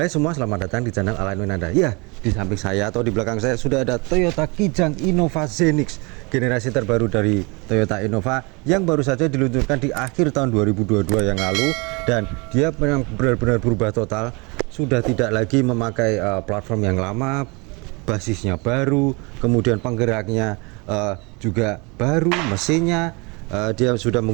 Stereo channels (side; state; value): left; quieter; 28.6 dB